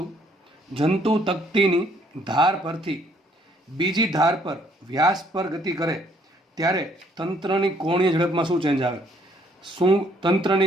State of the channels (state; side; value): normal; both; correlation 0.65